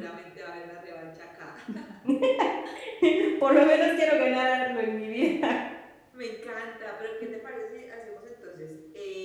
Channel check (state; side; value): identical; both; correlation 1.00